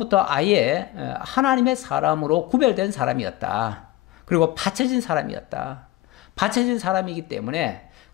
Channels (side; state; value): right; quieter; 16.9 dB